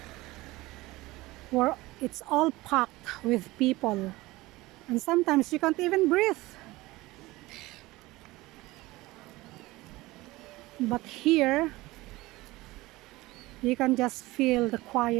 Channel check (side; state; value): left; quieter; 19.8 dB